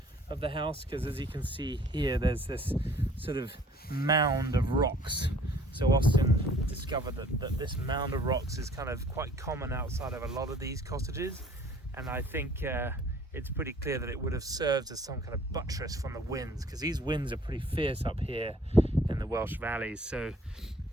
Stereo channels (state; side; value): normal; both; correlation 0.55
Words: of the house, because as you can see here, there's this sort of mound of rocks. So Austin discovered that this mound of rocks is kind of quite common outside of a lot of these cottages, and I think it's pretty clear that it would have served as some kind of buttress from the winds, because these winds are pretty fierce up here in the Welsh valleys. So